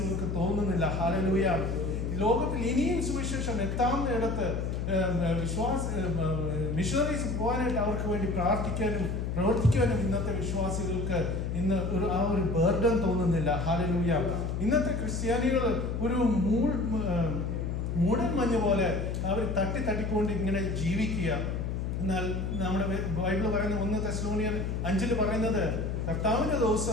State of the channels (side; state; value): left; noise; hum, 2 dB below the sound